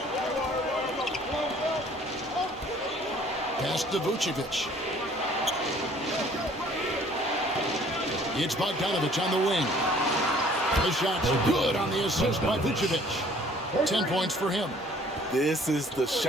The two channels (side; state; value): both; normal; correlation 0.56